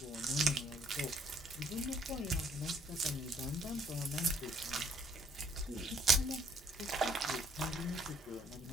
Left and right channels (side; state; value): both; normal; correlation 0.65